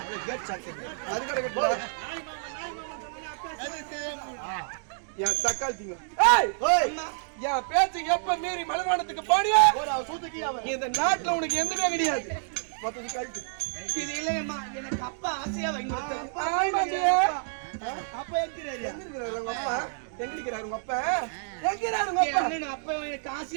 அது கடக்கடா யா சக்காலத்திங்க ஏய் ஓய் என் பேச்சு எப்ப மீறி மலைவானத்துக்கு பாடியா இந்த நாட்டுல உனக்கு எதுவுமே கிடையாது. இது இல்லையம்மா, எனக்கு அப்பா ஆசையா வாங்கி அப்பா எங்கிறாரு உங்க அப்பா? எங்கிறாரு உங்க அப்பா? எங்கிறாரு உங்க அப்பா? அப்பா எனக்கு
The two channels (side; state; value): left; silent; digital silence